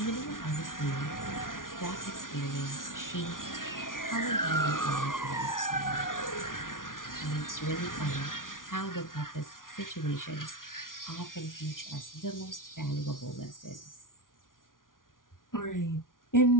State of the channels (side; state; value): right; late; 0.89 ms